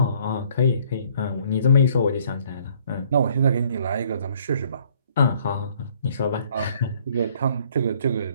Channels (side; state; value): both; inverted; correlation -0.60